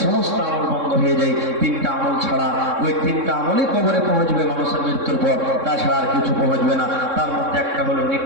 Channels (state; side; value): late; left; 3.6 ms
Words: সমস্ত আমল বন্ধ হয়ে যায়, 3টা আমল ছাড়া। ওই 3টা আমলই কবরে পৌঁছবে মানুষের মৃত্যুর পর, তাছাড়া আর কিছু পৌঁছবে না। তার মধ্যে একটা হলো